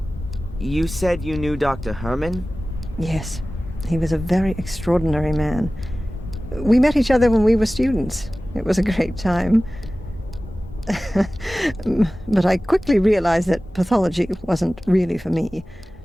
You said you knew Dr. Herman? Yes, he was a very extraordinary man. We met each other when we were students. It was a great time. But I quickly realized that pathology wasn't really for me.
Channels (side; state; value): both; normal; correlation 0.97